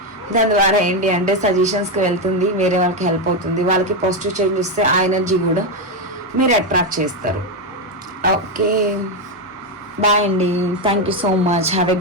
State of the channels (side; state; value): both; normal; correlation 0.07